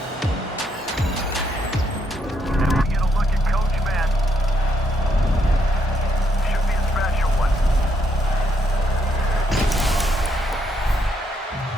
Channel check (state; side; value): normal; both; correlation 0.75